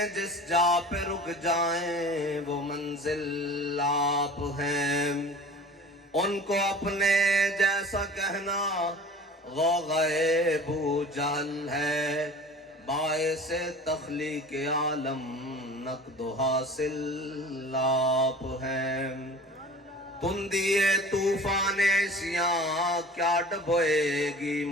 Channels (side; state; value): both; normal; correlation 0.41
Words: جس جا پہ رک جائیں وہ منزل آپ ہیں ان کو اپنے جیسا کہنا غوغائے بو جہل ہے باعث تخلیق عالم نقد و حاصل آپ ہیں تندیے طوفان عصیاں کیا ڈبوئے گی